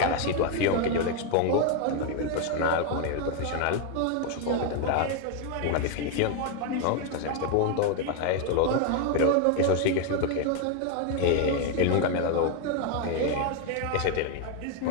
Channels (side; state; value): both; different; correlation 0.01